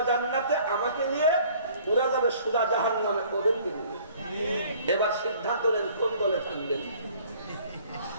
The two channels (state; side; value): inverted; both; correlation -0.55